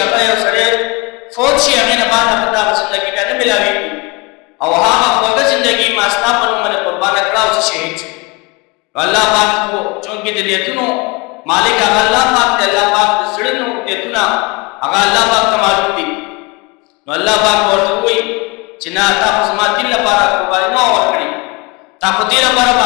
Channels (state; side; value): quieter; right; 26.8 dB